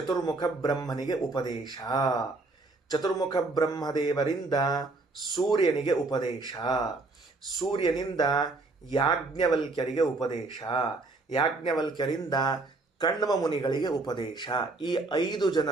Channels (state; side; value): quieter; left; 3.3 dB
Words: ಬ್ರಹ್ಮನಿಗೆ ಉಪದೇಶ, ಚತುರ್ಮುಖ ಬ್ರಹ್ಮದೇವರಿಂದ ಸೂರ್ಯನಿಗೆ ಉಪದೇಶ, ಸೂರ್ಯನಿಂದ ಯಾಜ್ಞವಲ್ಕ್ಯರಿಗೆ ಉಪದೇಶ, ಯಾಜ್ಞವಲ್ಕ್ಯರಿಂದ ಕಣ್ವ ಮುನಿಗಳಿಗೆ ಉಪದೇಶ. ಈ 5